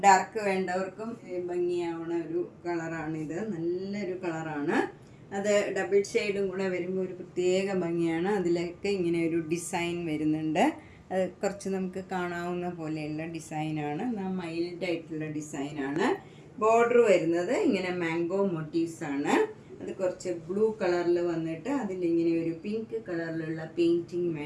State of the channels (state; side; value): identical; both; correlation 1.00